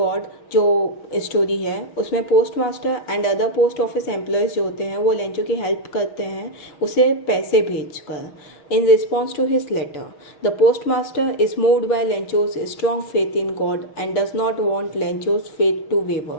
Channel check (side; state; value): right; late; 6.3 ms